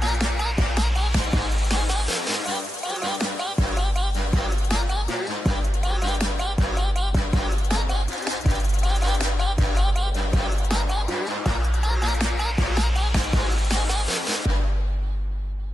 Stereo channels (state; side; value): normal; both; correlation 0.91